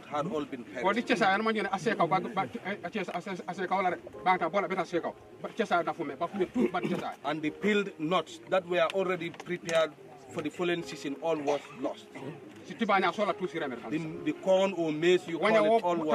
had all been perished. And the peeled nuts that were already prepared for the following season, all was lost. The corn or maize, you call it, all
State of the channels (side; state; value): both; identical; correlation 1.00